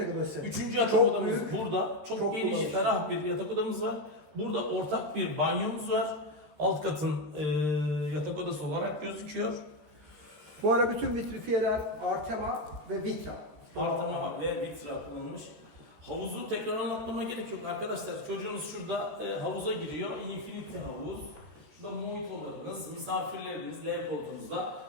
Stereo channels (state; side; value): late; left; 13 ms